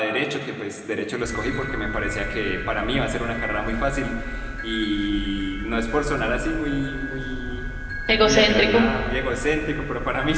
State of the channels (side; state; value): both; identical; correlation 1.00